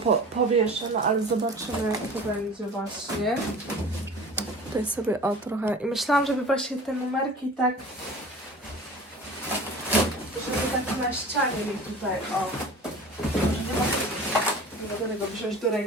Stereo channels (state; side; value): normal; both; correlation 0.40